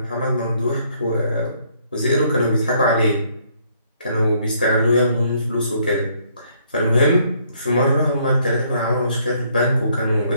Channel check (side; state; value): both; inverted; correlation -0.67